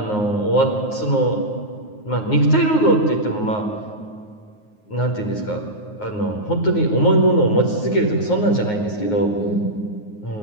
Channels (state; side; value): late; right; 9.5 ms